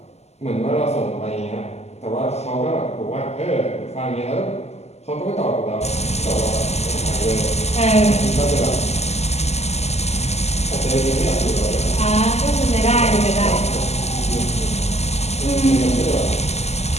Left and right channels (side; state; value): right; late; 0.31 ms